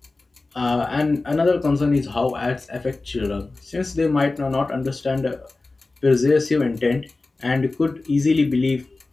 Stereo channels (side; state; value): right; quieter; 3.4 dB